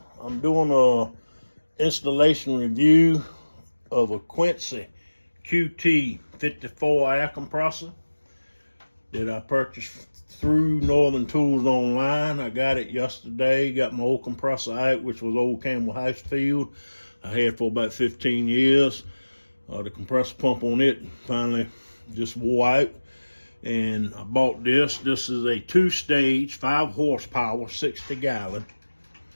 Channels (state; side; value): inverted; both; correlation -1.00